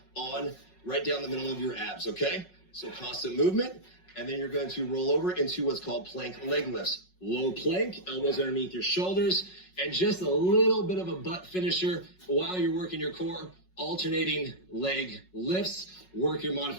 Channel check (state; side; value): late; right; 5.4 ms